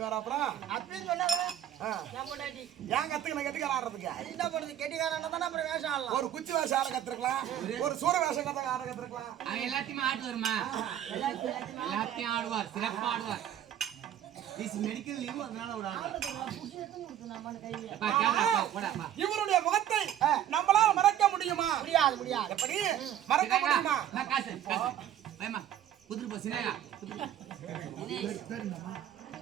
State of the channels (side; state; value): left; quieter; 10.9 dB